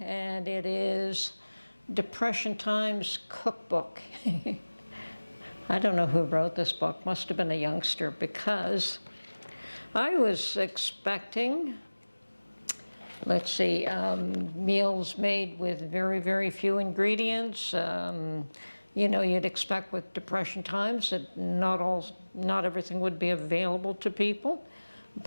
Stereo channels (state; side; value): inverted; both; correlation -1.00